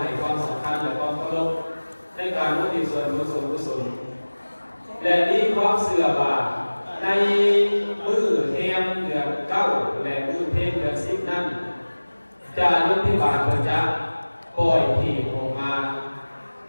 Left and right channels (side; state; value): both; inverted; correlation -1.00